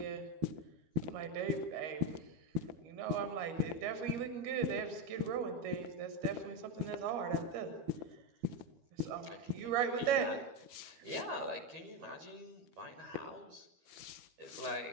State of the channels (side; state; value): left; late; 12 ms